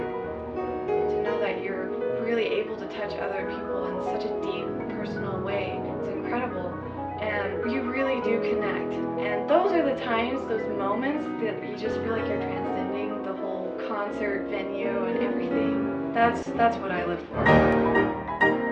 To know that you're really able to touch other people in such a deep, personal way, it's incredible. And you really do connect. And those are the times, those moments that you just feel like you're transcending the whole concert venue and everything. That's what I live for.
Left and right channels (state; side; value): identical; both; correlation 1.00